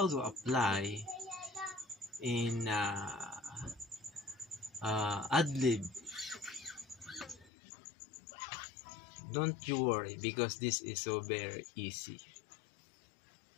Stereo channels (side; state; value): right; drops out; at 7.5 s